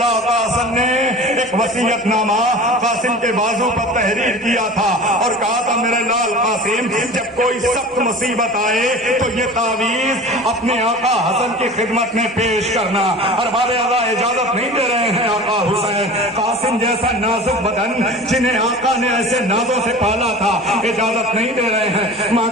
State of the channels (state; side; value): normal; both; correlation 0.38